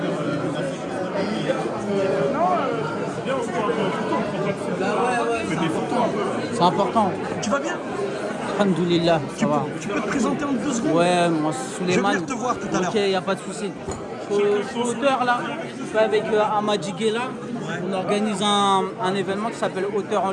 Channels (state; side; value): identical; both; correlation 1.00